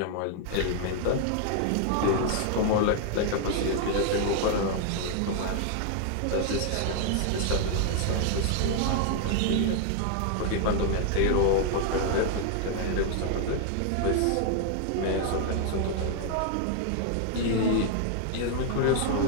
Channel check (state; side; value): different; both; correlation 0.00